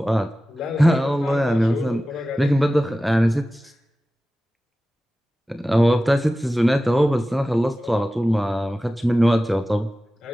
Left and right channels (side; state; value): both; normal; correlation 0.96